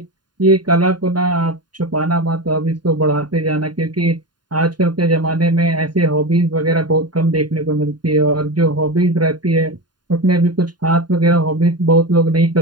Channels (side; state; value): left; late; 0.70 ms